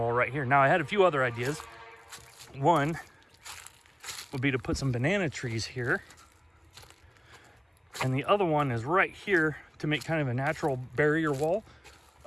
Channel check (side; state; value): both; identical; correlation 1.00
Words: right here. Now I had a few other ideas. One would be to put some banana trees here. And the other one is right here to make kind of a natural barrier wall,